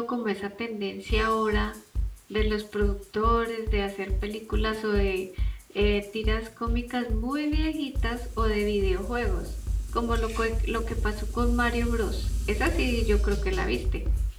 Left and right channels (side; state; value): both; identical; correlation 1.00